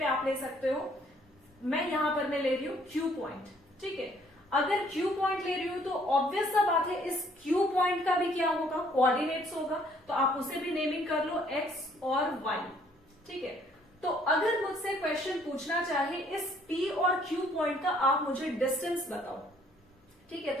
आप ले सकते हो। मैं यहां पर मैं ले रही हूं q पॉइंट, ठीक है। अगर q पॉइंट ले रही हूं तो ऑब्वियस सा बात है इस q पॉइंट का भी क्या होगा, कोऑर्डिनेट्स होगा। तो आप उसे भी नेमिंग कर लो x और y, ठीक है। तो अगर मुझसे क्वेश्चन पूछना चाहे इस P और Q पॉइंट का, आप मुझे डिस्टेंस बताओ, ठीक है।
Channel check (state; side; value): normal; both; correlation 0.63